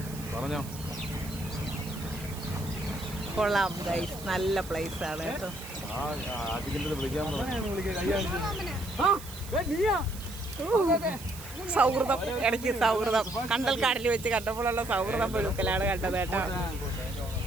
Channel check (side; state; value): right; noise; hiss, 15 dB below the sound